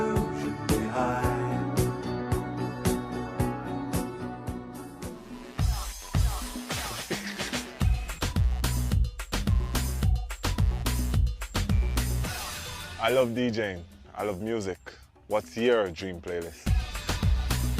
behind. I love DJing. I love music. What's your dream playlist?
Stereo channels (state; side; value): identical; both; correlation 1.00